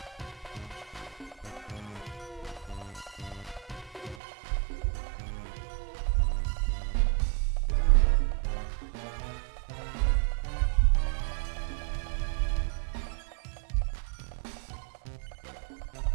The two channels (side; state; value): left; drops out; at 4.2 s